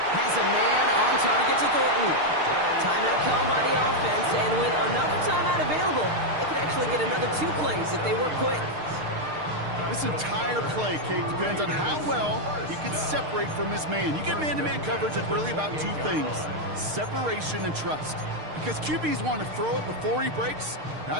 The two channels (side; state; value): left; late; 6.6 ms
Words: Has a man on target to Thornton. Timeout called by the offense, and with another timeout available, they could actually get another 2 plays if they work quick. This entire play, Kate, depends on how well he can separate from his man. You get man-to-man coverage, it's really about 2 things: separation and trust. Because QBs want to throw it before he breaks.